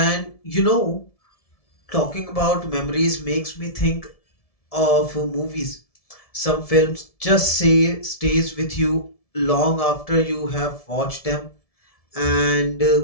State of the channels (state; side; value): late; right; 1.7 ms